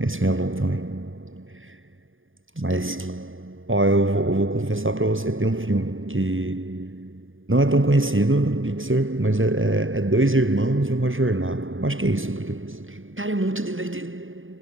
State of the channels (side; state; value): left; late; 0.58 ms